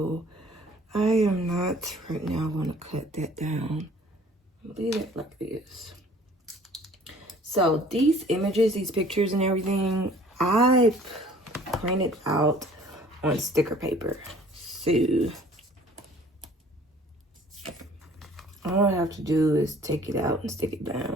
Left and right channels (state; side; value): normal; both; correlation 0.53